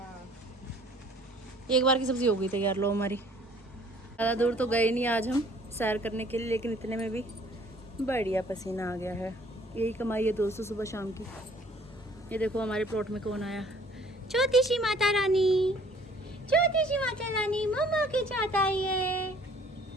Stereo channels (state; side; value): normal; both; correlation 0.56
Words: एक बार की सब्जी हो गई तैयार। लो हमारी। ज़्यादा दूर तो गए नहीं आज हम सैर करने के लिए, लेकिन इतने में भी बढ़िया पसीना आ गया है। यही कमाई है दोस्तों सुबह शाम की। ये देखो हमारे प्लॉट में कौन आया, छोटी सी माता रानी, छोटी सी माता रानी मम्मा की चाहत आई है।